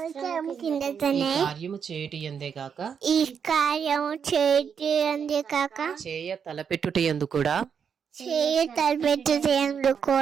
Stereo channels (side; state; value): left; quieter; 7.1 dB